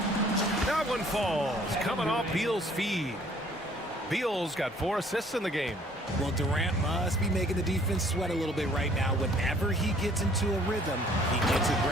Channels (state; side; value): normal; both; correlation 0.58